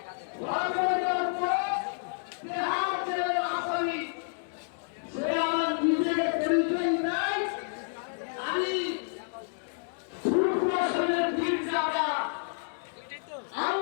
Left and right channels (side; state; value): right; silent; digital silence